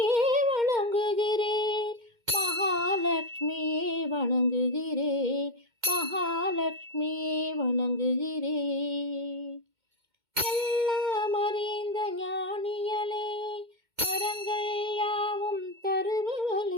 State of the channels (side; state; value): left; late; 2.1 ms